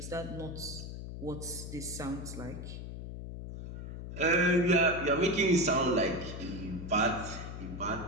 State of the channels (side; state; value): left; noise; hum, 8 dB below the sound